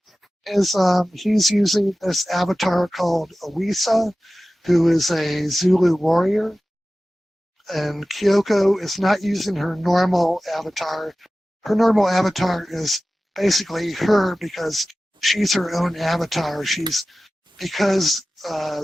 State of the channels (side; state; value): both; normal; correlation 0.96